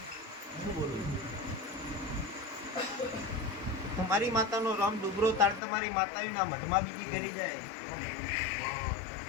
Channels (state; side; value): drops out; right; at 5.6 s